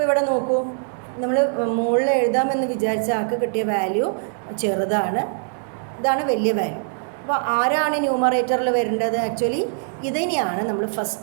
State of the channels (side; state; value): left; silent; digital silence